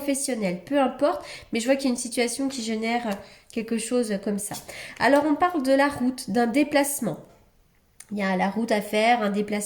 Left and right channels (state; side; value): identical; both; correlation 1.00